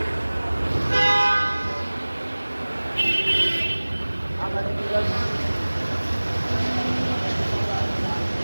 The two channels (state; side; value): inverted; both; correlation -1.00